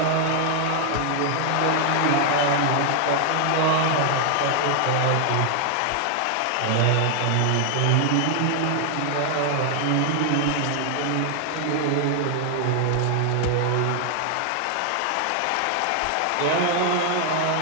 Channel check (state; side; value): different; both; correlation 0.00